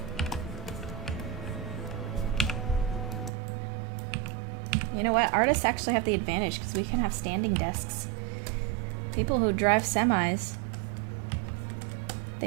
You know what? Artists actually have the advantage because we can have standing desks. People who drive semis,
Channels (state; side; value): drops out; left; at 3.3 s